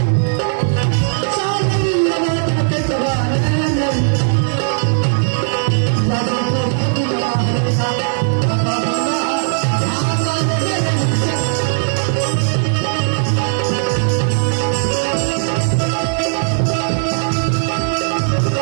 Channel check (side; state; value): left; silent; digital silence